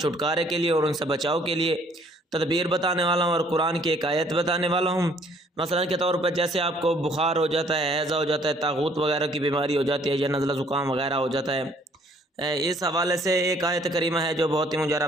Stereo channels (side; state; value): both; normal; correlation 0.61